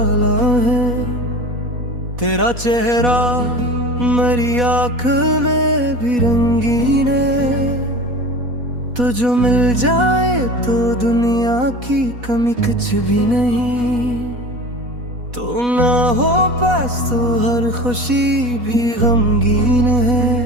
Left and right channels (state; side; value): late; left; 4.1 ms